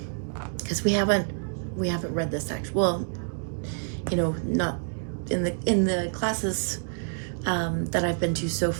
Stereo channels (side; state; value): left; silent; 60 dB below the other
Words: because we haven't read this actually. Well, you know, not in the classes that I've been to so